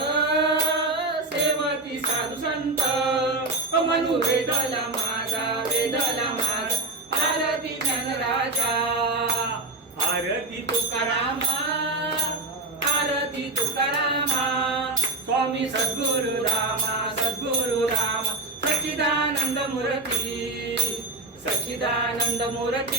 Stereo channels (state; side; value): quieter; left; 3.2 dB